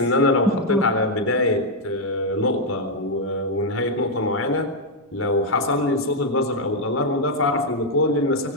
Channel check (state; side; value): normal; both; correlation 0.00